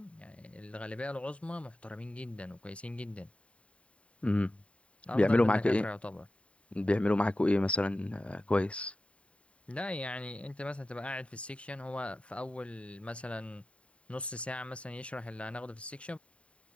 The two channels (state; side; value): late; right; 0.062 ms